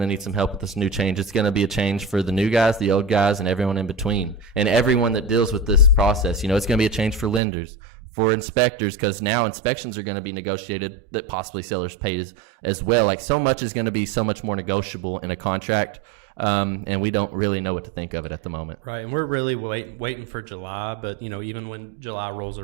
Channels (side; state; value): left; drops out; at 7.4 s